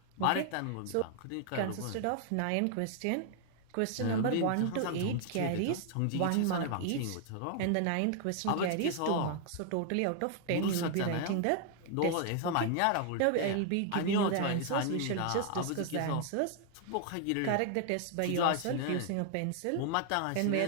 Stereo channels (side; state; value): both; different; correlation 0.00